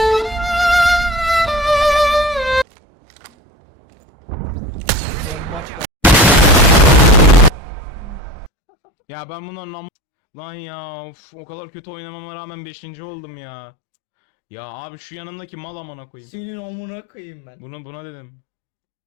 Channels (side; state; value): right; drops out; at 8.5 s